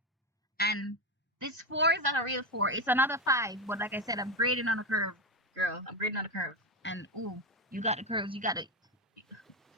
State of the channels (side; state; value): both; normal; correlation 0.13